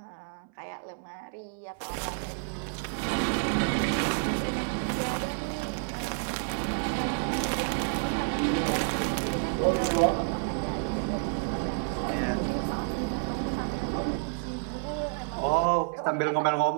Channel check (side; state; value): left; silent; 58 dB below the other